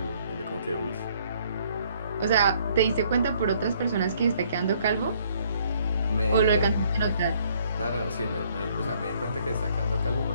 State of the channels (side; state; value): both; inverted; correlation -0.64